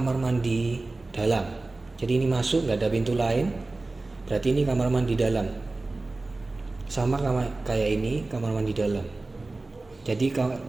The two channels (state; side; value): quieter; left; 3.2 dB